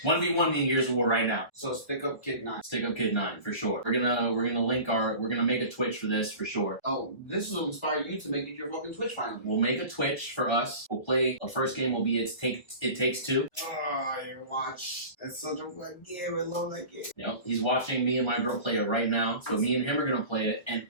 1v1 me in Years of War right now. So Stick Up Kid 9. Stick Up Kid 9 for sure. We're gonna make a Twitch for this for sure. Oh, this will inspire you to make it your fucking Twitch finally. We'll make a Twitch for us. We'll play. Our first game will be It Takes Two. Oh, you watch. That's such a fun game. I love that game. Yep. He's watching me and my girl play it right now. So me and him are gonna play it. And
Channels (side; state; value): right; late; 1.0 ms